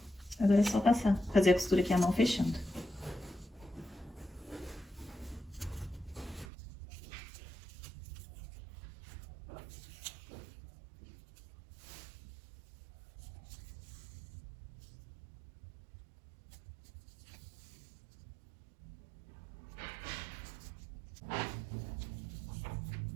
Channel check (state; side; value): drops out; left; at 6.5 s